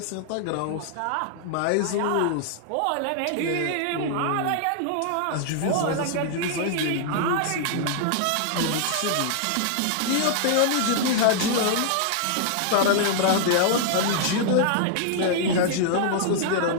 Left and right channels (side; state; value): both; different; correlation 0.00